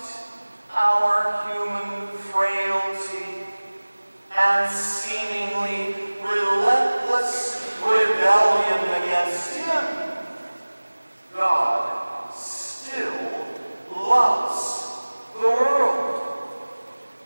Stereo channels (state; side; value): inverted; both; correlation -1.00